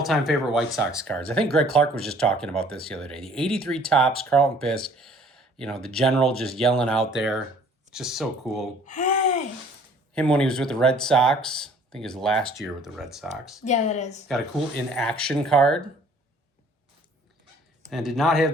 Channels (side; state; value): both; normal; correlation 0.55